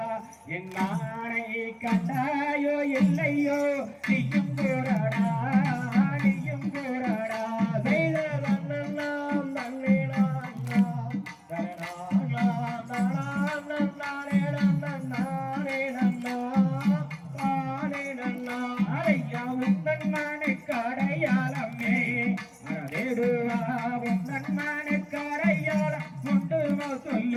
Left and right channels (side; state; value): both; identical; correlation 1.00